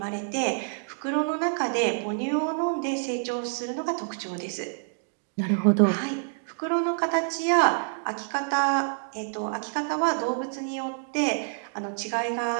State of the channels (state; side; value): silent; left; digital silence